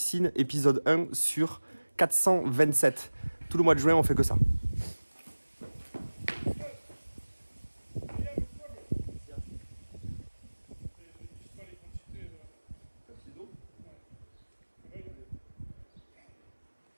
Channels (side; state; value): both; inverted; correlation -1.00